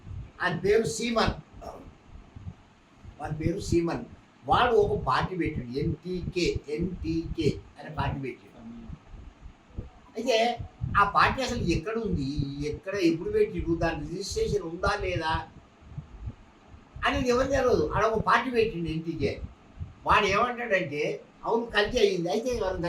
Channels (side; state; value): both; identical; correlation 1.00